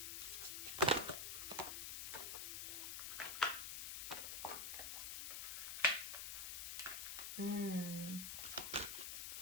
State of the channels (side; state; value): left; noise; hiss, 3 dB below the sound